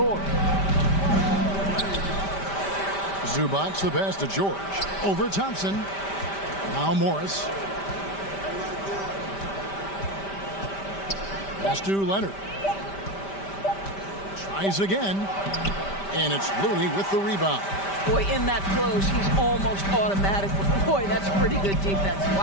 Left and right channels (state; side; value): late; right; 5.1 ms